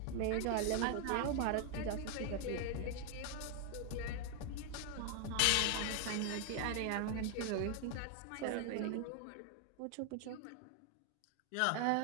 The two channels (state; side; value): different; both; correlation 0.00